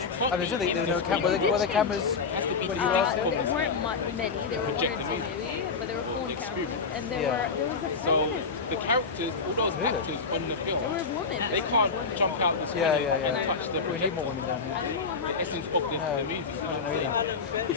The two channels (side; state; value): right; quieter; 4.9 dB